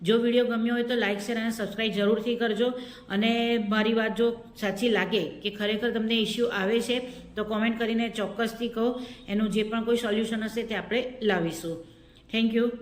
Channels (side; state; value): both; identical; correlation 1.00